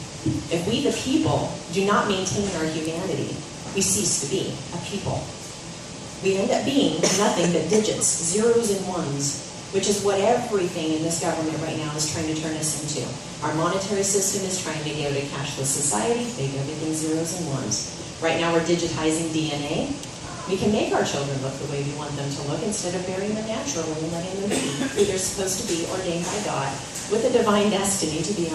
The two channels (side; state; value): both; identical; correlation 1.00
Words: If we the people do not maintain our humanity, we cease to be a people. We end up being nothing but digits, zeros and ones, which is what everything in this government right now is trying to turn us into. Our monetary system is trying to go to a cashless society, make everything zeros and ones. Right now we're digitizing DNA. We can make our children look the way we want them to look instead of burying them naturally and letting them be who they're supposed to be, ordained by God, with a divine destiny to be